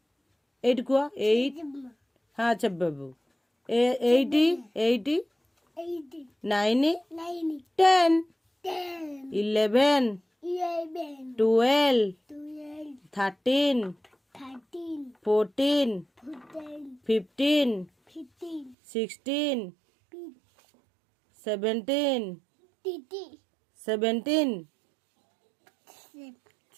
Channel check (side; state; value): left; drops out; at 18.8 s